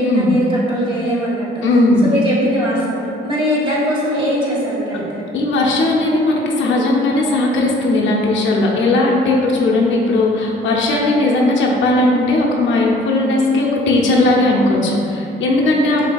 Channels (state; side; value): normal; both; correlation 0.54